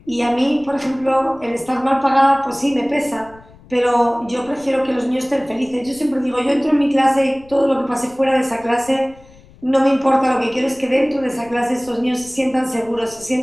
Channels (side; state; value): left; noise; rumble, 24 dB below the sound